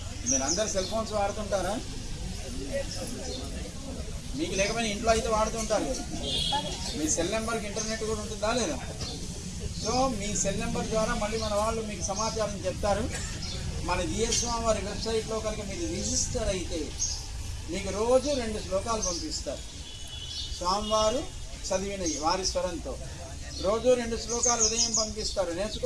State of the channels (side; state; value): both; identical; correlation 1.00